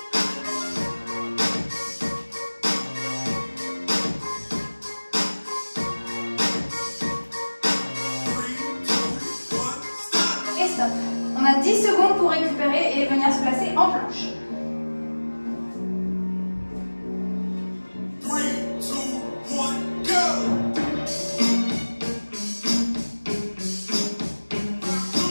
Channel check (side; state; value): both; inverted; correlation -1.00